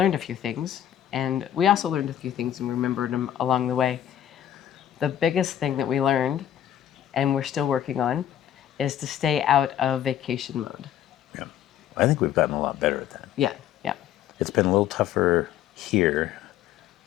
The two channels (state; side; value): quieter; right; 10.9 dB